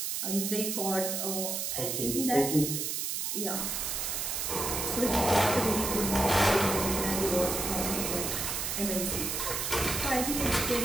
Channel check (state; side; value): noise; right; hiss, 1 dB below the sound